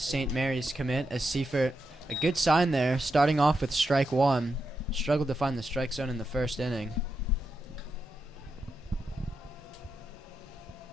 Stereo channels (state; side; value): normal; both; correlation 0.85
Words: Mary's commit, as Seifert, a good sign there, starting off with strike one. Struggled to find the strike zone in the first inning.